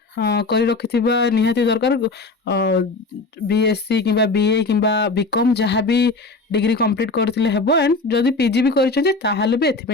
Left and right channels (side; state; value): right; quieter; 3.5 dB